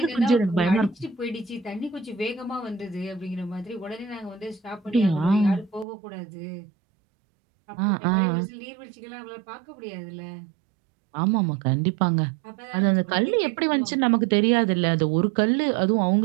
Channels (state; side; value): drops out; left; at 5.9 s